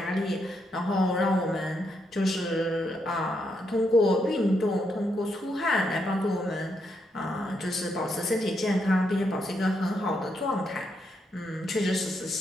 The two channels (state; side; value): normal; both; correlation 0.79